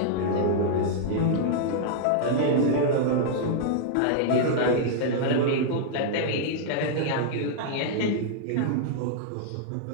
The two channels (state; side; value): different; both; correlation -0.01